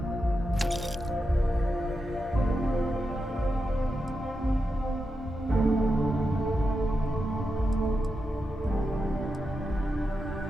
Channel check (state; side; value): normal; both; correlation 0.87